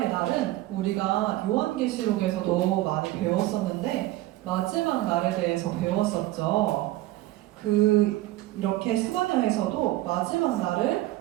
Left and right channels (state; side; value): quieter; left; 16.8 dB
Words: 날은 우리가 요한계시록에서도 많이 배웠었는데 마지막 날에 대해서 배웠었죠. 이렇게 스바냐에서도 마지막 날을